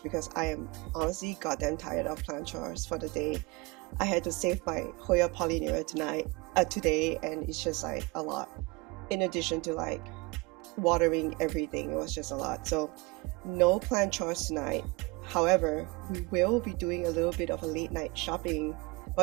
because I am honestly goddamn tired of plant chores for the day. I had to save my Hoya pollinera today, and it's just like a lot. In addition to like watering everything, it was just a lot. So no plant chores tonight. However, we will be doing a little bit of a late night shopping.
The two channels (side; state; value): left; quieter; 25.0 dB